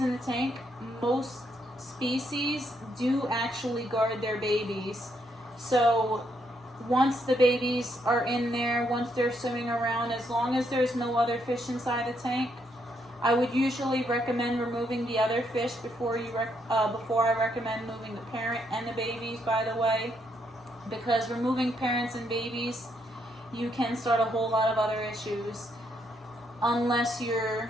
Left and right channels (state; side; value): normal; both; correlation 0.75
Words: the tank, most species do actually guard their babies. So once the babies are in there, once they're swimming around, as long as there's no other fish inside the tank, I would usually recommend removing the other fish before I recommend moving the parent and the babies, by the way, because removing parents and babies, you can start a whole lot of other issues unless you're